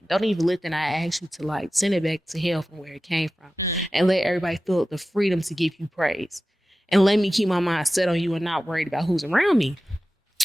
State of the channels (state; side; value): normal; both; correlation 0.95